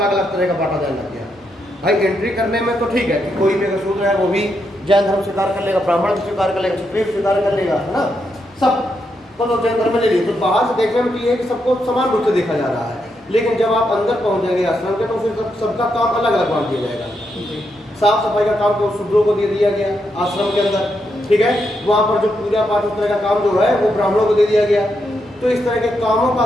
अलग तरह का बांटा जाने लग गया। भाई एंट्री करने में तो ठीक है कि कोई भी अगर शूद्र है वो भी जैन धर्म स्वीकार कर लेगा, ब्राह्मण भी स्वीकार कर लेगा, क्षत्रिय स्वीकार कर लेगा, है ना, सब तो जैन धर्म में ले लीजिए। तो बाहर से देखने में ये है कि सबको समान रूप से देखा जा रहा है, लेकिन जब आप अंदर पहुंच जाएंगे आश्रम के तो फिर सबका काम अलग अलग बांट दिया जाएगा। साफ सफाई का काम तो शूद्रों को दे दिया गया आश्रम के अंदर। ठीक है, वहाँ पर जो पूजा पाठ उस तरह का काम जो है वो ब्राह्मणों को दे दिया गया। तो इस तरह के कामों का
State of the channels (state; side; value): normal; both; correlation 0.81